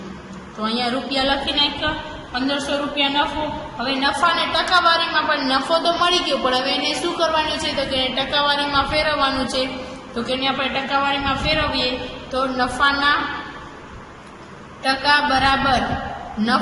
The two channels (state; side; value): identical; both; correlation 1.00